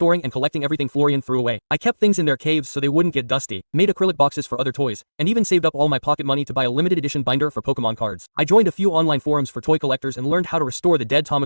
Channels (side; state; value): both; inverted; correlation -1.00